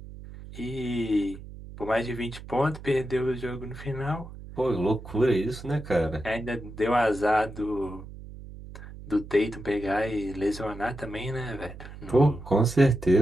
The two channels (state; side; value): noise; right; hum, 14 dB below the sound